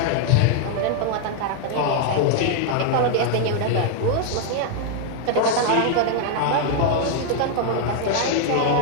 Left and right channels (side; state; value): both; different; correlation 0.00